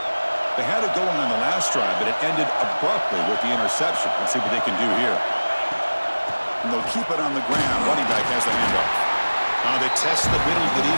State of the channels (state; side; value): inverted; both; correlation -1.00